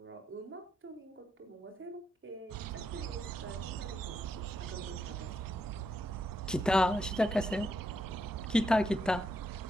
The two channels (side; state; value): both; normal; correlation 0.79